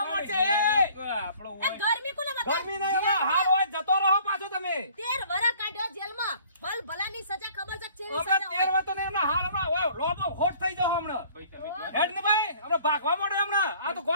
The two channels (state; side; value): inverted; both; correlation -0.54